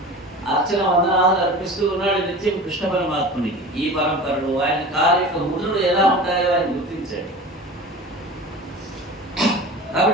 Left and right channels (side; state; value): both; normal; correlation 0.36